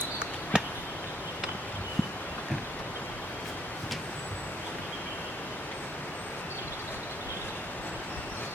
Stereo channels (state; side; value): normal; both; correlation 0.66